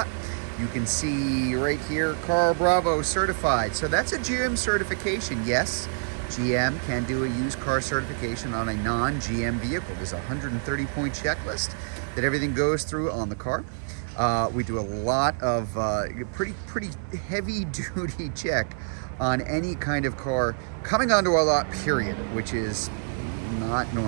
You can see right here, Car Bravo certified. So that's a GM certification, yes. GM can do a used car certification on a non-GM vehicle. There's a 130-point checklist that everything goes through on the car. We do a lot of pretty heavy-duty check on any kind of car coming onto our lot, period, which is not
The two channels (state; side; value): silent; left; digital silence